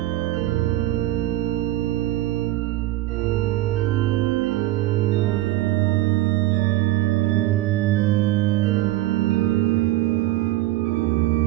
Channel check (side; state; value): left; quieter; 15.8 dB